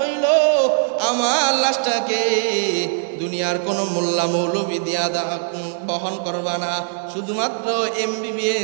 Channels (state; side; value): silent; left; 57 dB below the other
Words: হইল আমার লাশটাকে দুনিয়ার কোনো মোল্লা মৌলবী দিয়া বহন করবা না, শুধুমাত্র